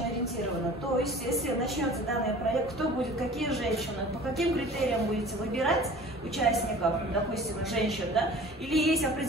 Ориентировано. То есть, если начнется данный проект, кто будет, какие женщины, по каким критериям будете выбирать участников, допустим, женщин, да? Или есть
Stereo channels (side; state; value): both; normal; correlation 0.44